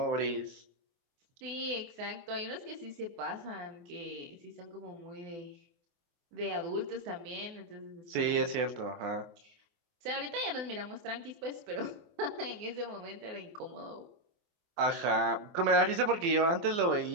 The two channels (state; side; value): late; left; 24 ms